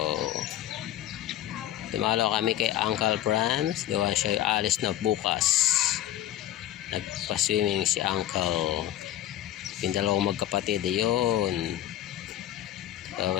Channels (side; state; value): right; quieter; 12.8 dB